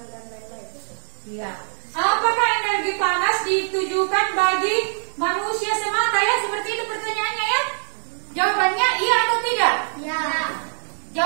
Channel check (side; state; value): left; silent; 57 dB below the other